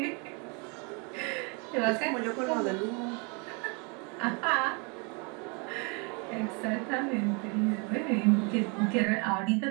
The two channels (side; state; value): left; quieter; 33.4 dB